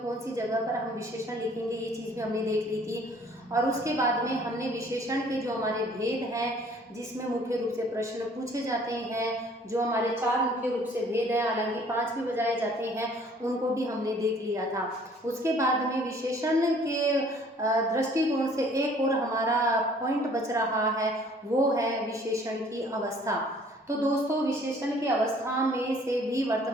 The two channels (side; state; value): both; normal; correlation 0.56